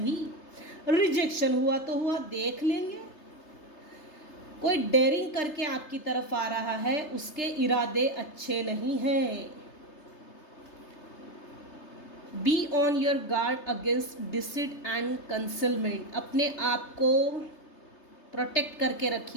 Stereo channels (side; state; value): right; late; 3.3 ms